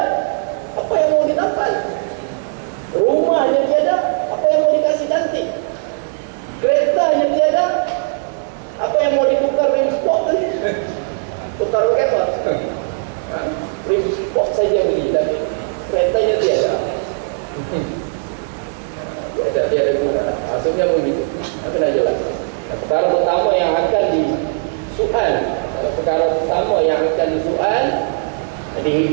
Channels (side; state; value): left; silent; 63 dB below the other